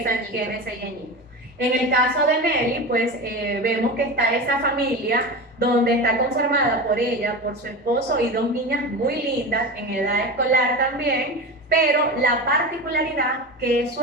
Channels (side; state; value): both; normal; correlation 0.25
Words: 6 añitos. En el caso de Nelly, pues vemos que está esa familia donde está conformada por ella, por su esposo y dos niñas muy lindas en edad escolar también, pero la particularidad que su